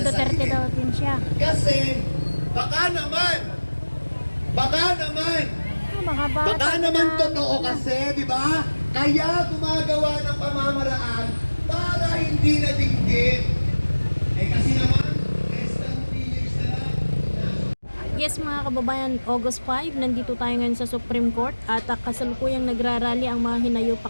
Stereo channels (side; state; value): both; inverted; correlation -1.00